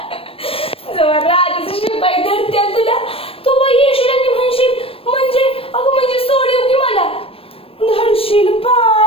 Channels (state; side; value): late; right; 0.28 ms